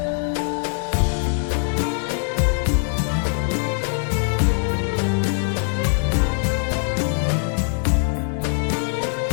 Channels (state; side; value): silent; right; 62 dB below the other